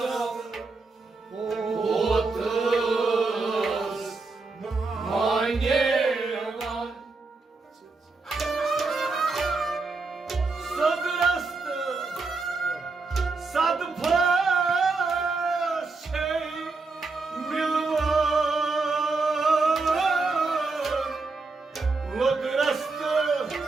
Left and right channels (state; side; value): quieter; left; 3.9 dB